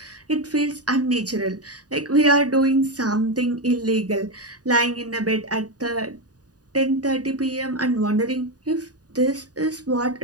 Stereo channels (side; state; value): left; late; 0.68 ms